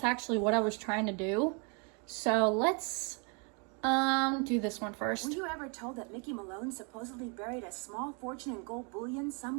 actually what I was trying to do. So let's do this one first. Were you ever told that Mickey Malone supposedly buried a small fortune in gold bullion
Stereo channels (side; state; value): left; quieter; 35.5 dB